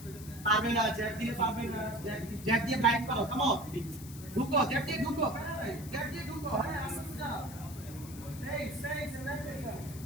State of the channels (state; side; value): noise; left; hiss, 16 dB below the sound